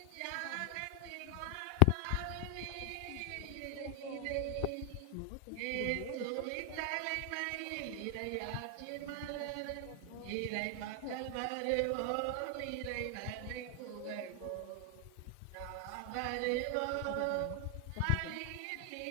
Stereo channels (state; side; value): different; both; correlation 0.00